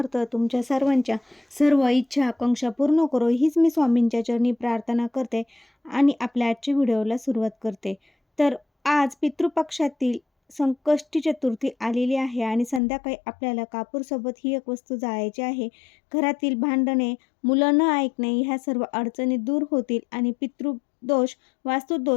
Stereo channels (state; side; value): drops out; right; at 12.8 s